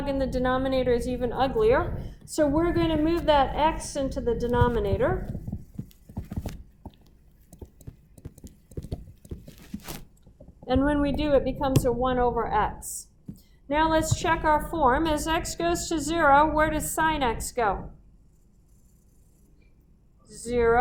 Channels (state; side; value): identical; both; correlation 1.00